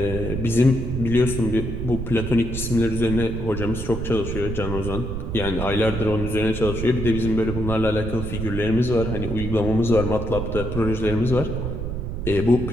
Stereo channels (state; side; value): noise; right; rumble, 5 dB below the sound